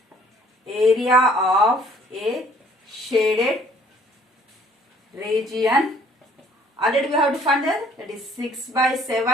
area of a shaded region. Already we have to find that is 6 by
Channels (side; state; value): both; normal; correlation 0.58